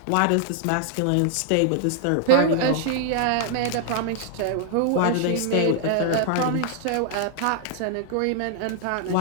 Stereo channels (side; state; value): both; different; correlation -0.01